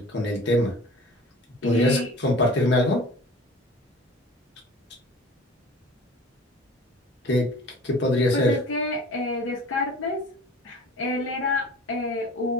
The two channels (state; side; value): normal; both; correlation 0.43